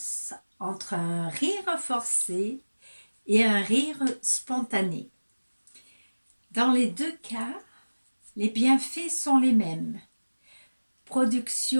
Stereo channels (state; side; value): inverted; both; correlation -1.00